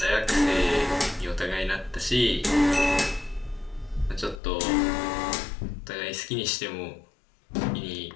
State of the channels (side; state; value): right; drops out; at 4.4 s